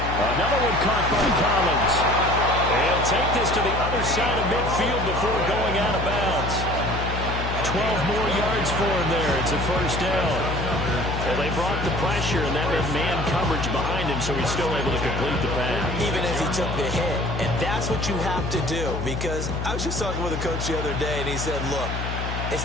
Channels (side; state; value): left; noise; hum, 4 dB below the sound